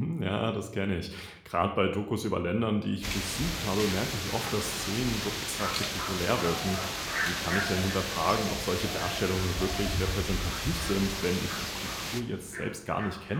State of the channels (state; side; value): identical; both; correlation 1.00